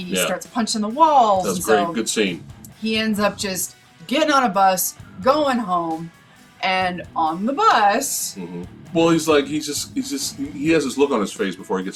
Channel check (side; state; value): both; identical; correlation 1.00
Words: starts punching the walls. That's great. Good scene. He ends up just getting on a bus, going home, and on the bus. Well, he has this look on his face before he